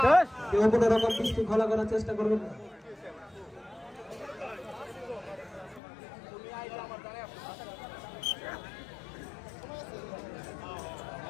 কেউ কোনো রকম বিশৃঙ্খলা করার চেষ্টা করবেন না।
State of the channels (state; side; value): drops out; right; at 5.8 s